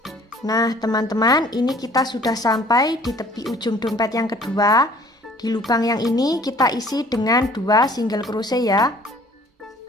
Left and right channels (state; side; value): normal; both; correlation 0.54